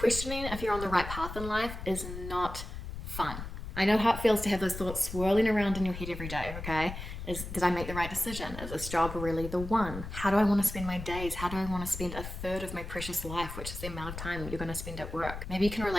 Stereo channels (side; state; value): left; noise; rumble, 8 dB below the sound